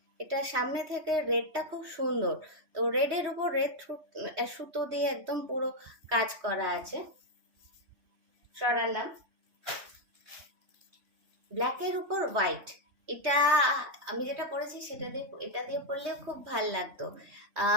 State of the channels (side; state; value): left; late; 3.2 ms